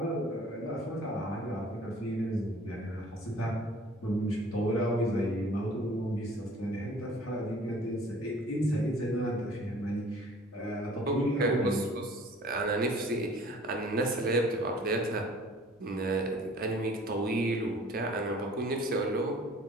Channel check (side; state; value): both; normal; correlation 0.51